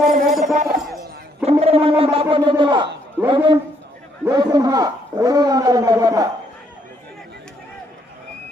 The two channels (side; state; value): both; normal; correlation 0.70